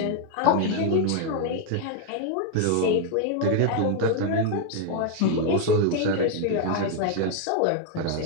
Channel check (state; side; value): different; both; correlation 0.00